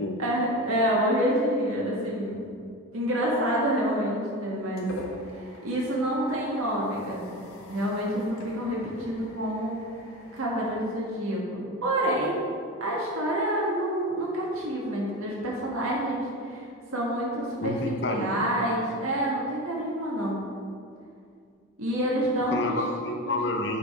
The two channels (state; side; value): normal; both; correlation 0.26